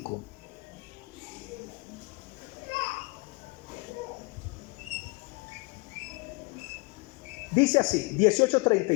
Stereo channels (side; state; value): right; quieter; 28.4 dB